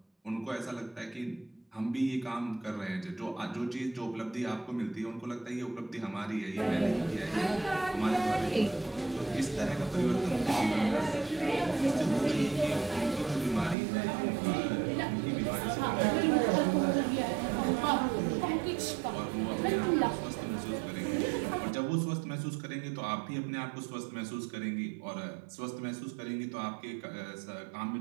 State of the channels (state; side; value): drops out; left; at 13.8 s